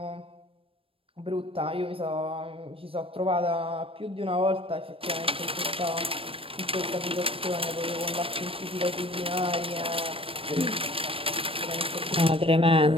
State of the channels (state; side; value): late; left; 0.27 ms